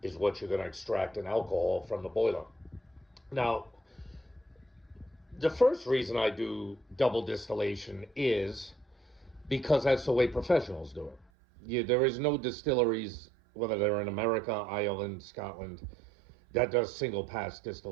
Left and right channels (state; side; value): drops out; left; at 11.2 s